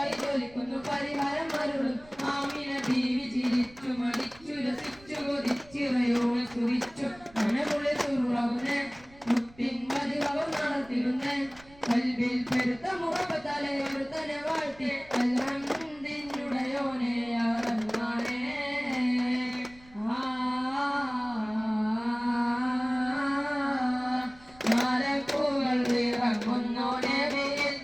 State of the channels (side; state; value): right; noise; rumble, 24 dB below the sound